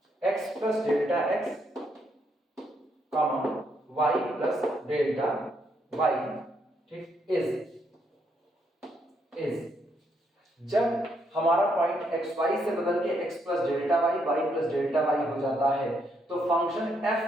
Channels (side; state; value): both; normal; correlation 0.75